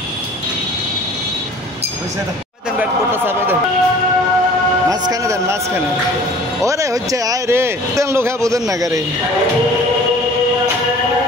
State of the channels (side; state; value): both; normal; correlation 0.48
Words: মাঝখানে দেন, মাঝখানে। ওরে হচ্ছে আয় রে, তেন লোক বোঝেন না গাড়ি